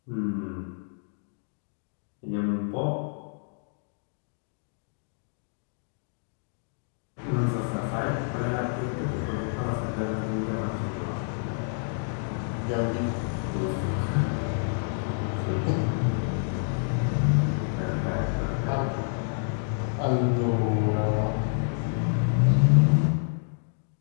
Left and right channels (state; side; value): silent; right; digital silence